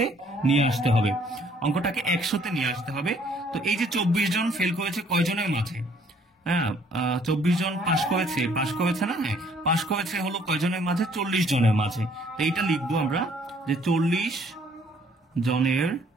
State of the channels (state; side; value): normal; both; correlation 0.62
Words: নিয়ে আসতে হবে, অঙ্কটাকে 100-তে নিয়ে আসতে হবে। তো এই যে 24 জন ফেল করেছে কয়জনের মাঝে, হ্যাঁ 24 জন পাশ করেছে না, হ্যাঁ পাশ করেছে হলো কয়জনের মাঝে, 40 জনের মাঝে। তো এইটা লিখবো আমরা যে 40 জনের